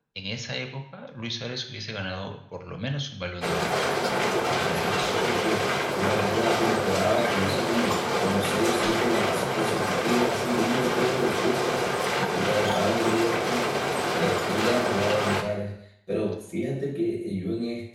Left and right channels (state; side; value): identical; both; correlation 1.00